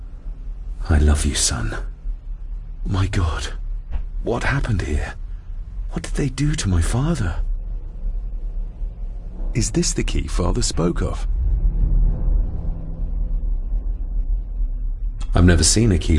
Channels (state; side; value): identical; both; correlation 1.00